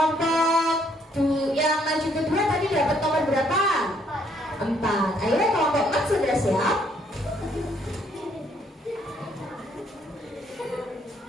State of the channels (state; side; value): normal; both; correlation 0.67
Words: yang maju kedua tadi dapat nomor berapa? 4. Ayo kelompok 4 sudah siap?